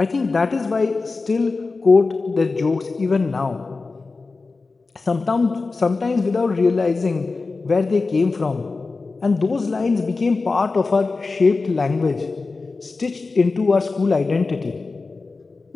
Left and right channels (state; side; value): quieter; right; 3.9 dB